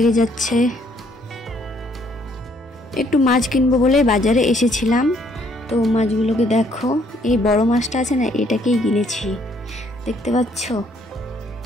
যাচ্ছে। একটু মাছ কিনবো বলে বাজারে এসেছিলাম। তো মাছগুলোকে দেখো, এই বড় মাছটা আছে না, এটাকেই কিনেছি, দেখতে পাচ্ছ।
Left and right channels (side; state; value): both; normal; correlation 0.66